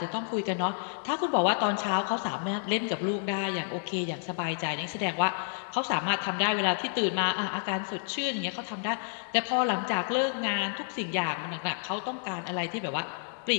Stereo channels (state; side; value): silent; right; digital silence